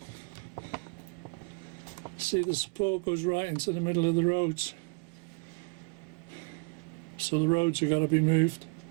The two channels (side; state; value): left; quieter; 33.1 dB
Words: See, the support goes right into the middle of the roads. So the roads have got to be moved.